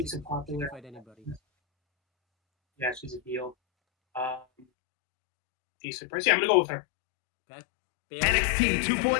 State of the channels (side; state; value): right; drops out; at 4.7 s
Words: she a can popular. fight anybody. Yeah, she's a heel. Decent price. Yeah, I'm gonna go with her. Okay. Bailey. NXT